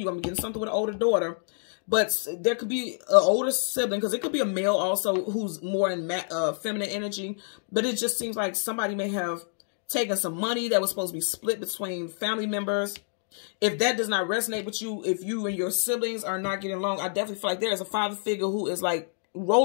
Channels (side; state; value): right; silent; digital silence